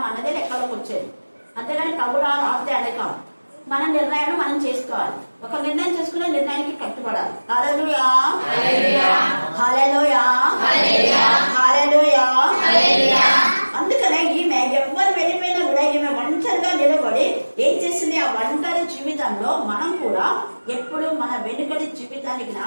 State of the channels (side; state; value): both; inverted; correlation -1.00